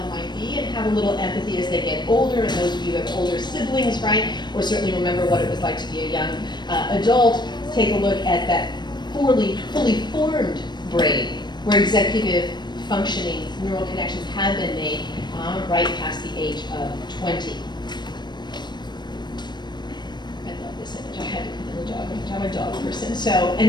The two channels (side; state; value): right; late; 0.21 ms